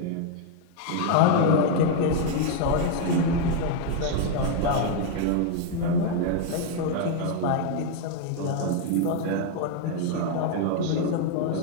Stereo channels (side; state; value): both; different; correlation 0.00